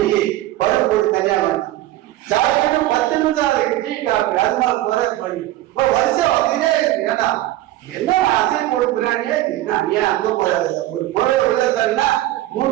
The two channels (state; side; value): quieter; left; 15.2 dB